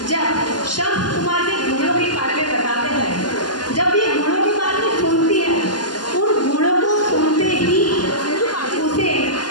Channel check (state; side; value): late; right; 0.70 ms